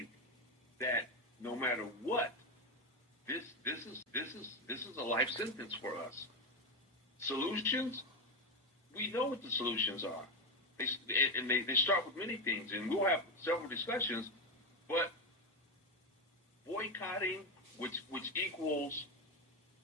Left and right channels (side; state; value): both; normal; correlation 0.11